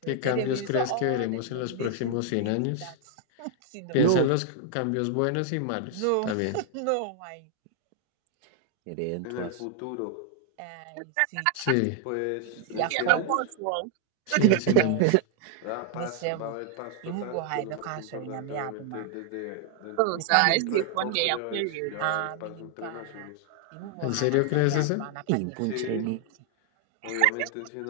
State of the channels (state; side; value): different; both; correlation 0.00